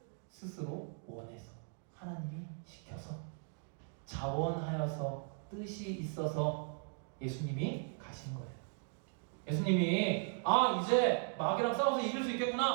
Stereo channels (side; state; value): left; silent; 53 dB below the other